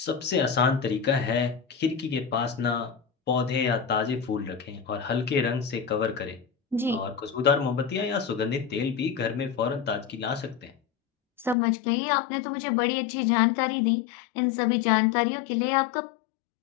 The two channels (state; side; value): drops out; right; at 11.6 s